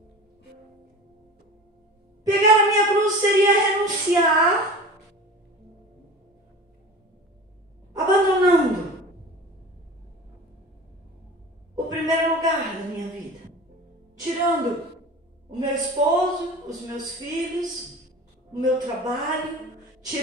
Pegar a minha cruz seria renunciar, abandonando o primeiro lugar da minha vida, tirando o meu esposo, os meus filhos, o meu trabalho,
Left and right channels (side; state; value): both; normal; correlation 0.37